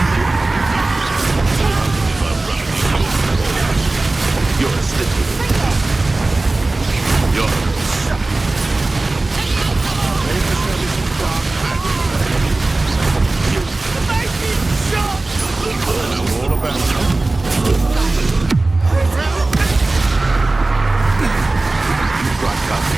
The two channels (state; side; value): quieter; left; 3.1 dB